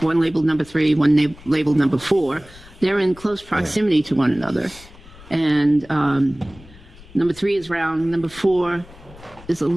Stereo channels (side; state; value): left; noise; rumble, 21 dB below the sound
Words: one labeled number 3, one labeled number 4. They're in close proximity to one another. And number 3 is round, number 4 is a